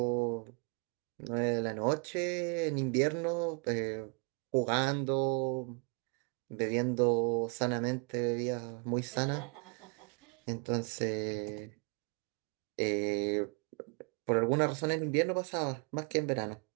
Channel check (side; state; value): left; quieter; 35.1 dB